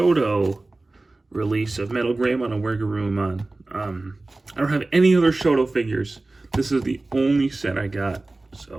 release of MetalGreymon and WereGarurumon. I don't have any other Shodo figures. This is the only set I got,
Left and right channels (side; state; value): left; quieter; 3.1 dB